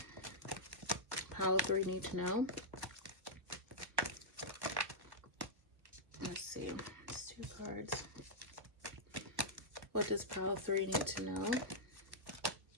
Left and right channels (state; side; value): late; left; 1.4 ms